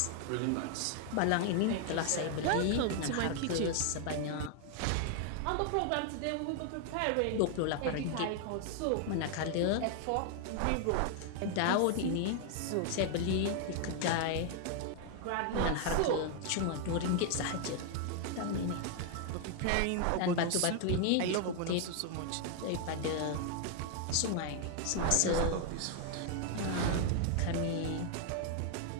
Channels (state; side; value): different; both; correlation 0.00